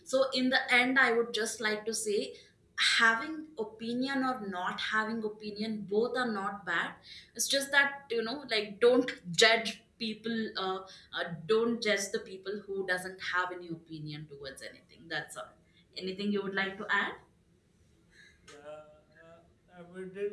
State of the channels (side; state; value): both; identical; correlation 1.00